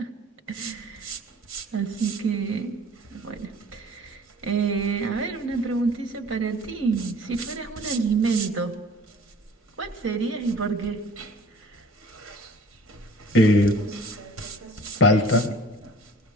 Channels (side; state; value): both; normal; correlation 0.48